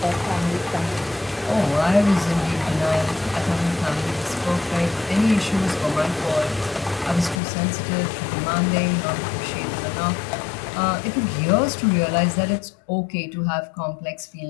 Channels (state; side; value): drops out; right; at 7.4 s